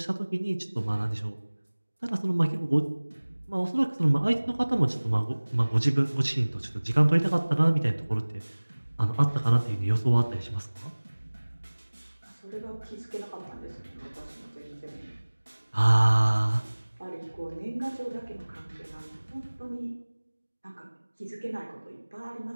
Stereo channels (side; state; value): both; inverted; correlation -1.00